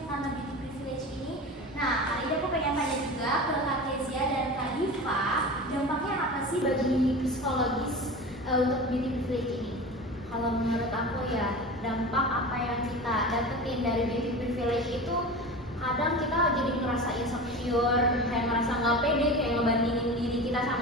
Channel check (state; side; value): normal; both; correlation 0.31